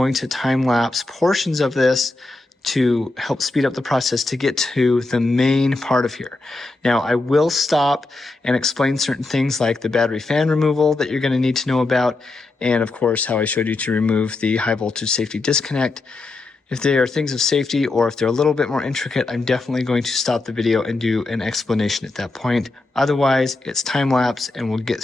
to time lapse portions of this to help speed up the process to get to the main part of here. Now, I will stop and explain certain things like the battery fan removal that you're going to need to know about, and of course, how I showed you to remove the high voltage safety disconnect. If they are things of safety or if they're a little bit more intricate, I'm definitely going to stop the video and do an explanation at that point. Otherwise, it's time lapse and we'll get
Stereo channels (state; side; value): quieter; right; 3.2 dB